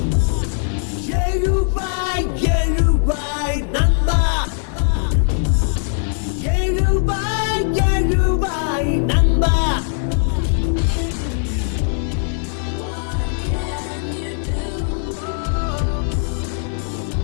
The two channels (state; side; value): silent; right; 63 dB below the other